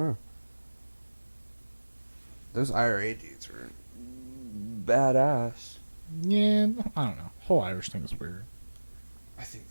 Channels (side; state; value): both; inverted; correlation -1.00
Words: Those IRA dudes were badass. Yeah, I don't know. The whole Irish thing is weird. I think